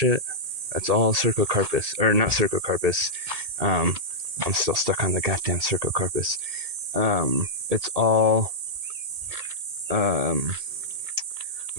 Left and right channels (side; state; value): left; late; 1.8 ms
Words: that's all Cercocarpus, or not Cercocarpus. I'm still stuck on the goddamn Cercocarpus. It's all